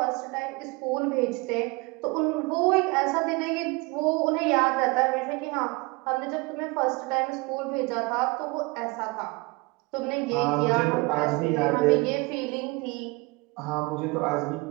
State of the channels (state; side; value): quieter; left; 26.0 dB